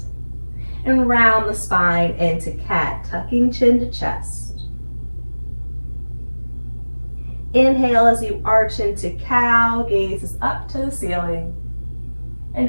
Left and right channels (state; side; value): inverted; both; correlation -1.00